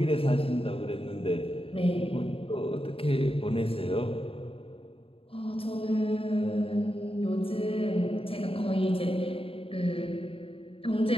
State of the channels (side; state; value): right; late; 0.27 ms